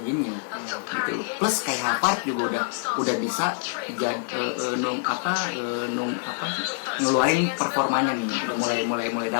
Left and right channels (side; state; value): right; silent; digital silence